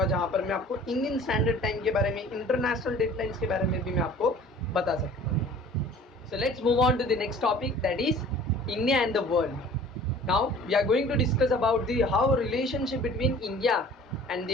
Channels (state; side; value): normal; both; correlation 0.48